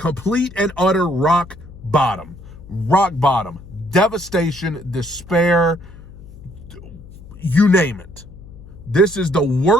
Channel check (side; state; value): left; noise; hum, 18 dB below the sound